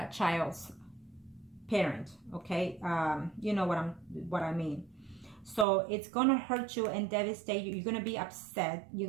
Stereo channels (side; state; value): left; drops out; at 5.7 s